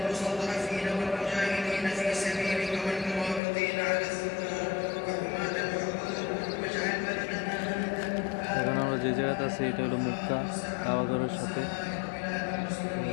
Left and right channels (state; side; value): drops out; right; at 3.4 s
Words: এখন আমরা যে জায়গাতে আছি এটা হলো মক্কা কাবাঘরের সাথে,